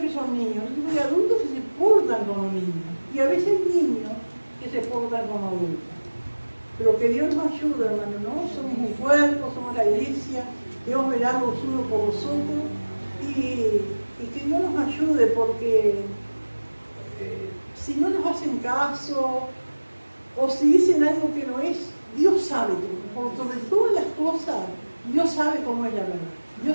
que son niños. Hay adultos que se portan como niños y a veces hay niños que se portan como adultos. Pero que Dios nos ayude, hermano, ¿no? Somos un cuerpo, somos la iglesia, Dios verá los unos por vosotros y que Dios nos ayude, porque si no nos hacen caso o si dicen algo que no es, Dios sabe todo. Por sobre todas las cosas, Dios sabe cómo es la verdad.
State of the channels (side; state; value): both; inverted; correlation -1.00